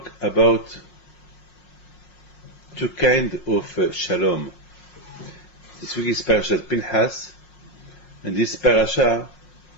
about two kinds of shalom. This week is Parashat Pinchas, and this parasha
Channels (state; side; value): late; right; 5.5 ms